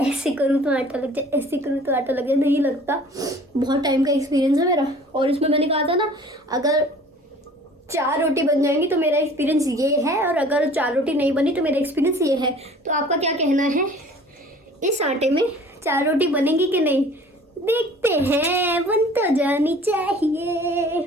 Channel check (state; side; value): normal; both; correlation 0.49